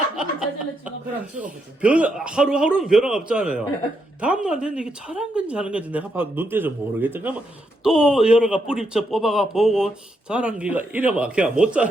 그럼 죽어보지. 하루하루는 변화가 없잖아요. 다음날 됐는데 이게 자란 건지 하는 건지 내가 봐도 눈대서 모르겠다. 그러면 또 여러가 뿌리쳐 뽑아가 보고 자란 기가 이래봐. 그냥 못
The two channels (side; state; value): both; normal; correlation 0.80